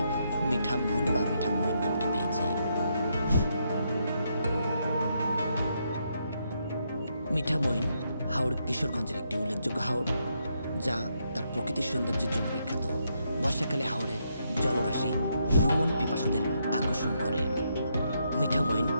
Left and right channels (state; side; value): inverted; both; correlation -0.78